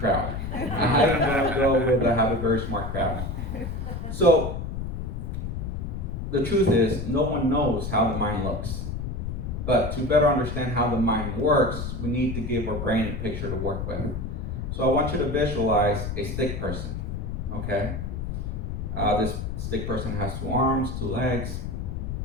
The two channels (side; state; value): left; noise; rumble, 4 dB below the sound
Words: I'm going to go with I have a very smart crowd. So the truth is, no one knows how the mind looks. But to better understand how the mind works, we need to give our brain a picture to work with. So I want you to visualize a stick person, okay? This stick person has 2 arms, 2 legs,